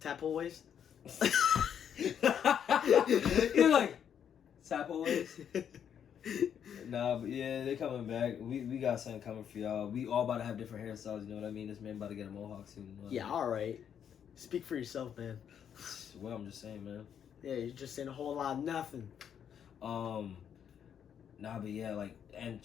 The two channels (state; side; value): quieter; right; 8.6 dB